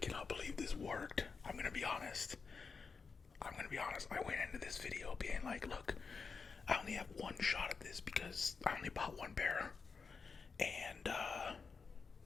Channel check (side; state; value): right; quieter; 5.1 dB